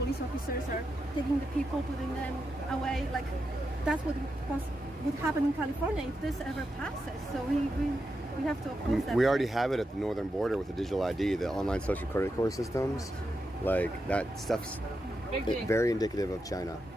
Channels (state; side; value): normal; both; correlation 0.86